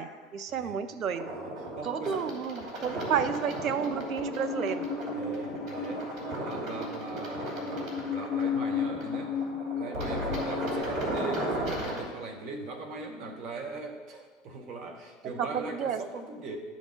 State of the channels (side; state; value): both; normal; correlation 0.34